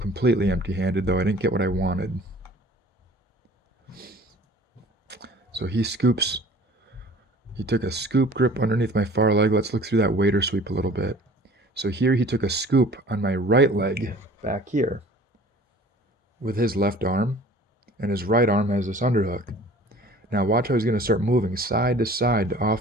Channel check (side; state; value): both; normal; correlation 0.48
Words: empty-handed, though I didn't get what I wanted. So he scoops. He took a scoop grip underneath my far leg. Let's look through that waiter sweep a little bit. So here he took a scoop on my right leg back here with his left arm, and his right arm has this underhook. Now watch how he's going to start moving side to side to